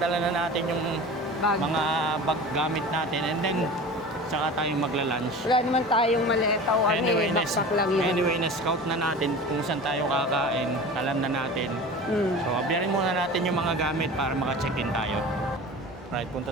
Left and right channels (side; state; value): right; noise; hum, 29 dB below the sound